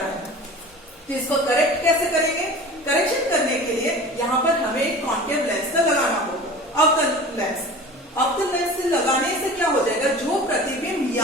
है। तो इसको करेक्ट कैसे करेंगे, करेक्शन करने के लिए यहाँ पर हमें एक कॉन्केव लेंस का लगाना होगा, अवतल लेंस। अवतल लेंस से लगाने से क्या हो जाएगा, जो प्रतिबिंब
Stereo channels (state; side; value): normal; both; correlation 0.38